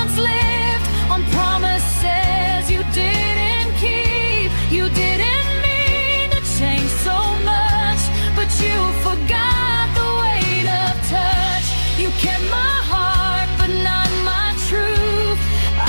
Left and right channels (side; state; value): both; inverted; correlation -1.00